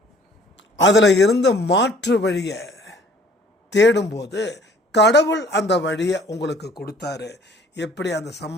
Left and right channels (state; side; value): normal; both; correlation 0.55